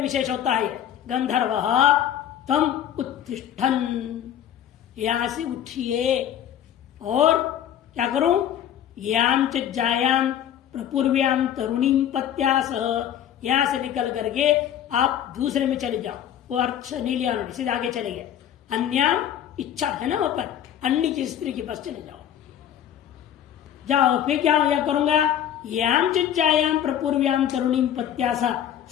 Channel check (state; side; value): quieter; right; 10.3 dB